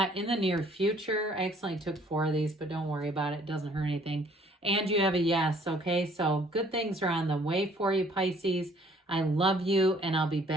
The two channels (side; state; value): both; normal; correlation 0.59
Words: in the near future. I accidentally took 4 of these, but don't worry about it. It doesn't hurt anything. And you have a yes, okay? So good things are on the way for you, Pisces. I love you, and I'll be